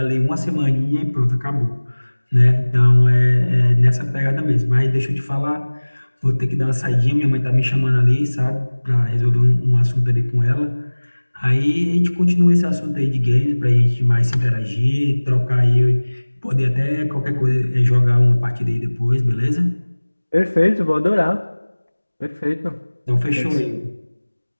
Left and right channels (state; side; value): inverted; both; correlation -1.00